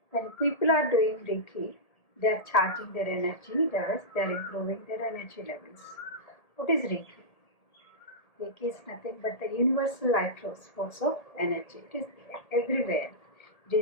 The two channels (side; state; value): right; late; 1.8 ms